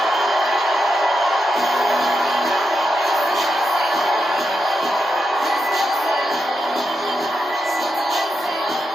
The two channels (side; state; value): both; normal; correlation 0.86